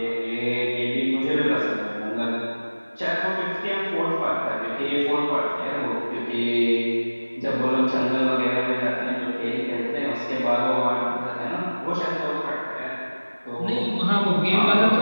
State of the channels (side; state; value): both; inverted; correlation -1.00